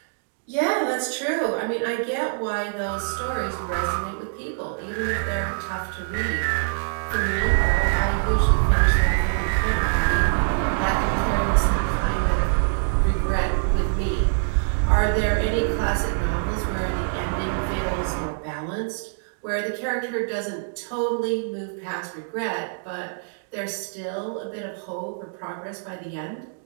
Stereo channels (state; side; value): silent; left; digital silence